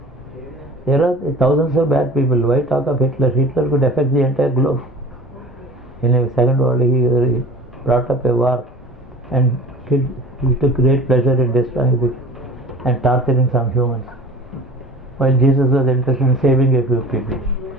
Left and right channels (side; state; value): both; normal; correlation 0.42